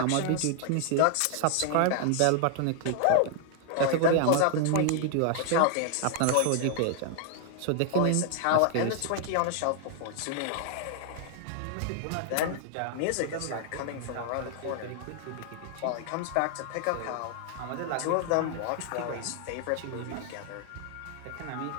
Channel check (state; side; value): different; both; correlation 0.00